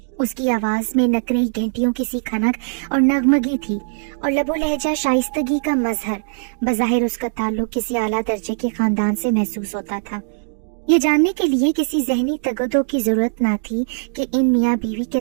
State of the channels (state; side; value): silent; left; digital silence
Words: उसकी आवाज में नकरई घंटियों की सी खनक और नगमगी थी और लबो लहजा शाइस्तगी का मजहर। बज़ाहिर उसका ताल्लुक किसी आला दर्जे के खानदान से महसूस होता था। ये जानने के लिए किसी जहनी तगदो की जरूरत ना थी कि इन मियाँ बीवी के